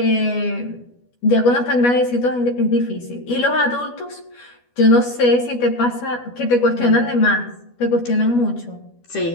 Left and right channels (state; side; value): late; right; 12 ms